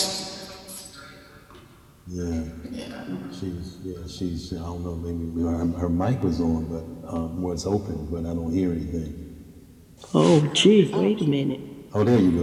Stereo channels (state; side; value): identical; both; correlation 1.00